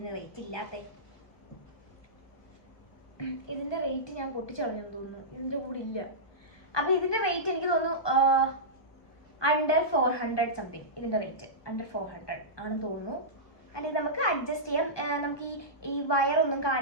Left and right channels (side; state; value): right; late; 1.1 ms